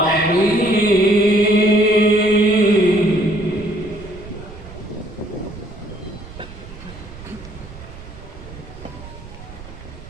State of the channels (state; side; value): noise; right; rumble, 16 dB below the sound